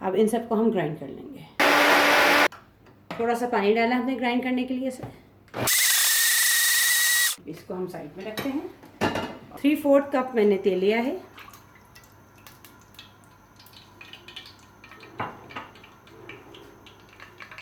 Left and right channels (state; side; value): identical; both; correlation 1.00